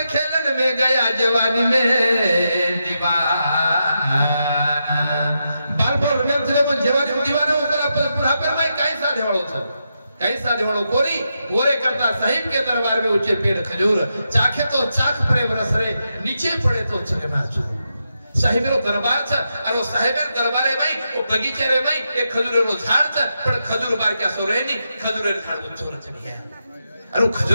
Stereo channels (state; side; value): inverted; both; correlation -0.85